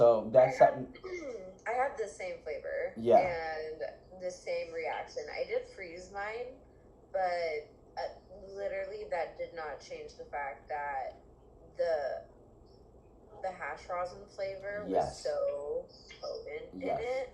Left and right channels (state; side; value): identical; both; correlation 1.00